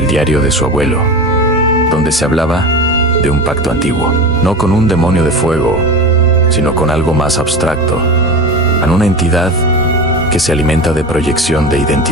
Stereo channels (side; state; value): both; normal; correlation 0.27